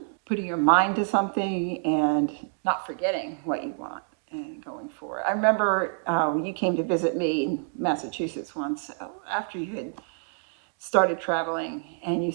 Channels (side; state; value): left; silent; digital silence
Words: putting your mind to something and not forgetting what you want and going for it. I remember when you came to visit me in Massachusetts once, after you had started traveling, and you